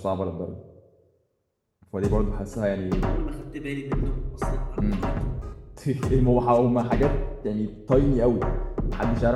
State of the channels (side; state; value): both; identical; correlation 1.00